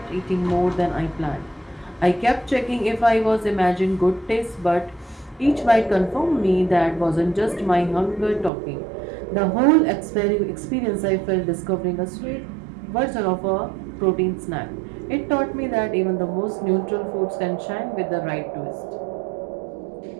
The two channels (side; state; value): left; drops out; at 8.5 s